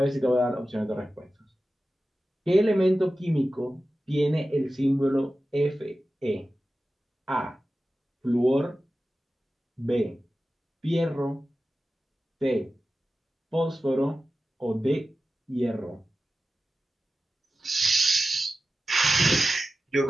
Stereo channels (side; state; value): both; normal; correlation 0.94